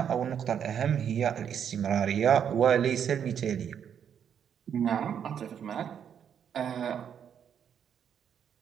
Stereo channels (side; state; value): left; quieter; 8.4 dB